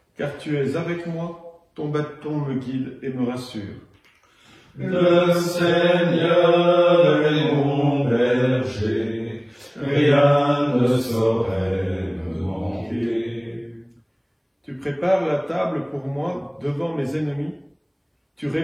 car tu es avec moi, ton bâton me guide et me rassure. Le Seigneur est mon berger, rien ne saurait me manquer. Tu prépares la table pour moi devant mes ennemis. Tu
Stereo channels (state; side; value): identical; both; correlation 1.00